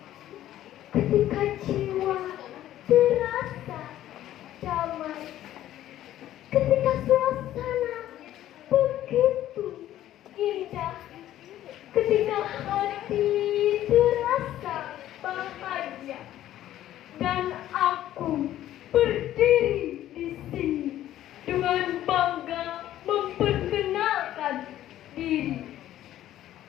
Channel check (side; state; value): right; quieter; 12.9 dB